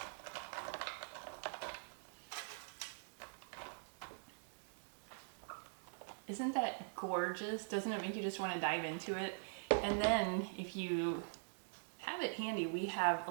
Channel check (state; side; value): silent; left; digital silence